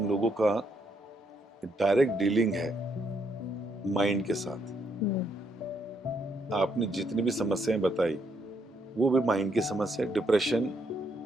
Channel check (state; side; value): normal; both; correlation 0.74